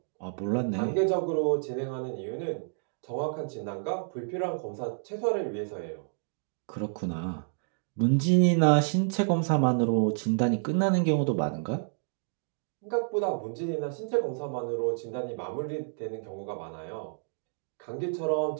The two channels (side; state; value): left; silent; digital silence